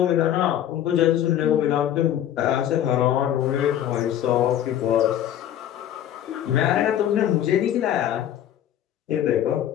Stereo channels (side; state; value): right; quieter; 11.1 dB